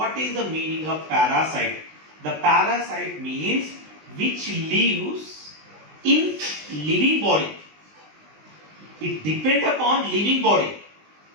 is the meaning of parasite? The parasite means which lives in living body. It depends upon living body.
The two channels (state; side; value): late; left; 20 ms